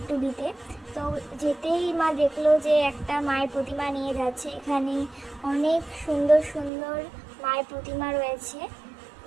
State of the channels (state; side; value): drops out; left; at 6.7 s